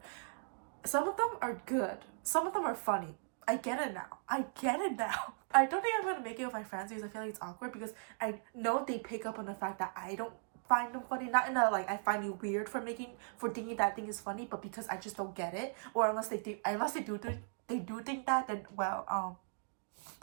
Some of them are good. Some of them are funny. I get it now. I get it now. I don't think I'm gonna make it with my friends because I feel like it's awkward, because I know they pick up on the fact that I don't find them funny. Not in a like I find you weird for thinking that thing is funny, but because I just don't get it. Or unless they do think that, then well,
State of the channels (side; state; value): left; silent; digital silence